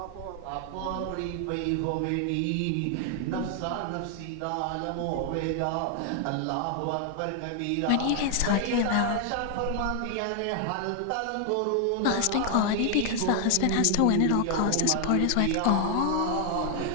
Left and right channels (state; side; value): different; both; correlation 0.00